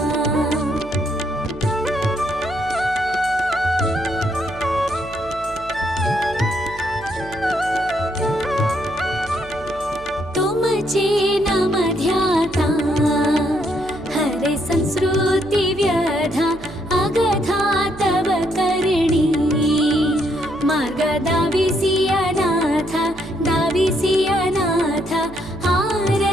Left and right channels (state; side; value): noise; right; hum, 18 dB below the sound